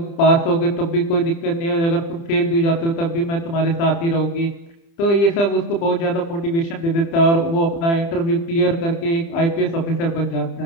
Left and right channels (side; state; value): right; late; 30 ms